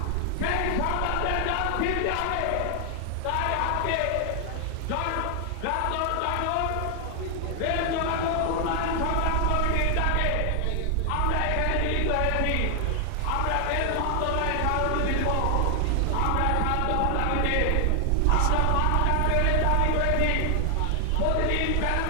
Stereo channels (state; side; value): different; both; correlation 0.00